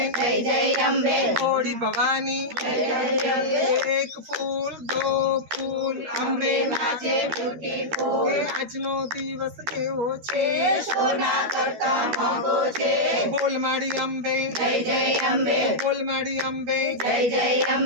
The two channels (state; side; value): late; left; 13 ms